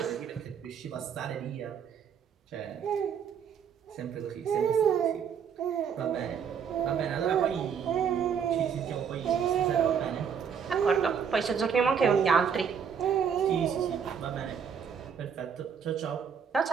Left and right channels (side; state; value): left; quieter; 7.2 dB